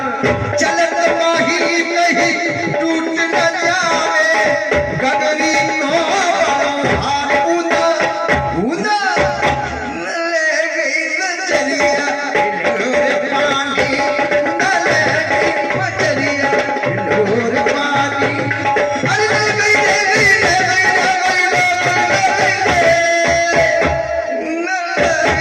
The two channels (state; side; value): identical; both; correlation 1.00